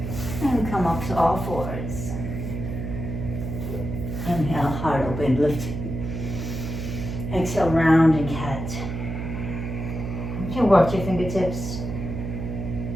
and come up to all fours. Inhale, heart open, lift. Exhale, round and cat. You can work your fingertips.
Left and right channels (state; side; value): noise; right; hum, 5 dB below the sound